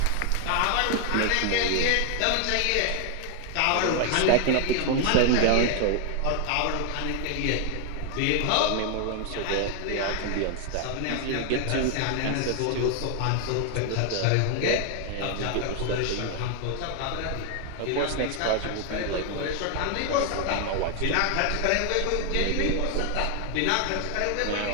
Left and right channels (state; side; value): different; both; correlation 0.00